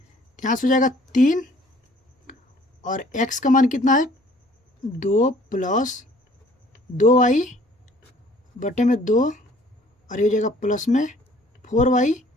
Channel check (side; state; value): both; normal; correlation 0.56